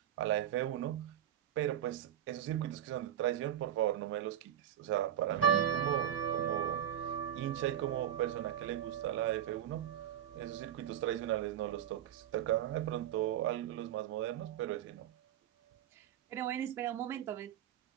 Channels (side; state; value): left; quieter; 10.9 dB